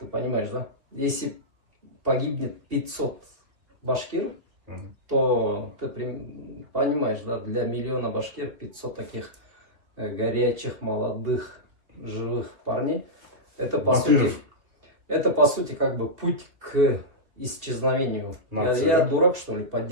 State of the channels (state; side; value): late; left; 2.7 ms